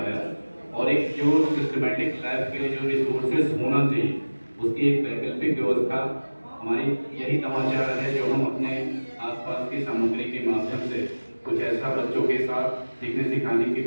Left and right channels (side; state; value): both; inverted; correlation -1.00